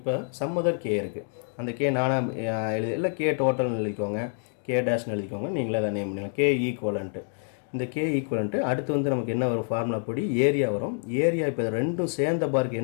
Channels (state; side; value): silent; right; digital silence